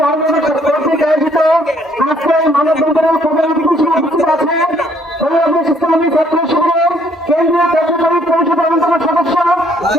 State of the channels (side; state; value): both; normal; correlation 0.65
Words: কর্তৃক আয়োজিত আজকে মানববন্ধনের প্রধান অতিথি উপস্থিত আছে বাংলাদেশ ইসলামী ছাত্র শিবিরের কেন্দ্রীয় কার্যকরী পরিষদ অন্যতম সদস্য,